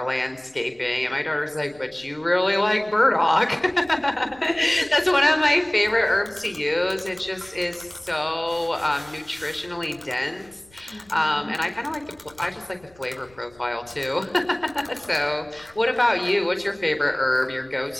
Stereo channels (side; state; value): left; noise; rumble, 29 dB below the sound